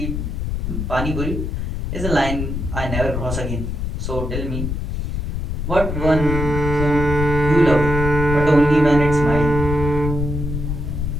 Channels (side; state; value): left; noise; rumble, 3 dB below the sound